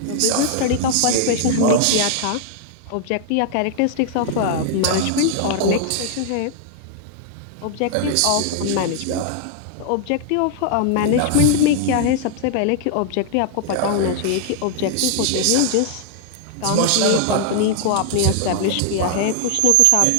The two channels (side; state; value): both; different; correlation -0.01